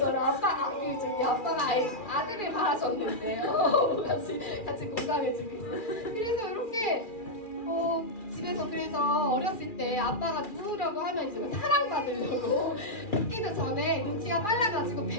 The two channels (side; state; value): right; late; 2.4 ms